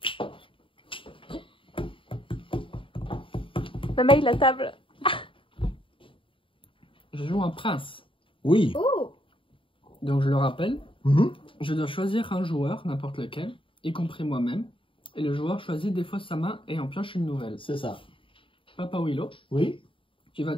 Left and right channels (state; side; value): late; right; 0.25 ms